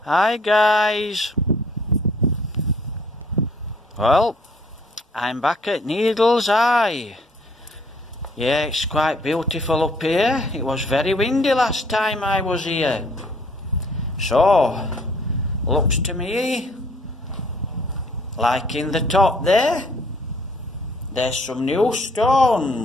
Hi guys. Well, I'm back at Needleseye. Yeah, it's quite beautiful up here. It was very windy last time I was here. So, looks to me like in the top there's some new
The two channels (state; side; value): normal; both; correlation 0.60